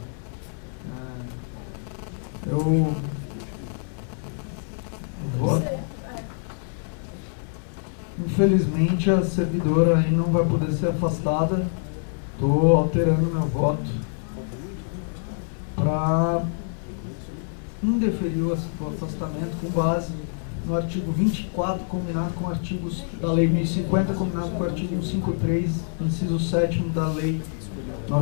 Eu vou. Infelizmente, a servidora aí não vai poder ser afastada. Estou alterando meu voto para indeferir o afastamento com base no artigo 24, combinado com artigos da Lei 1050, combinado com o artigo 153, inciso 7º da Lei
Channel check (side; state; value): right; silent; 60 dB below the other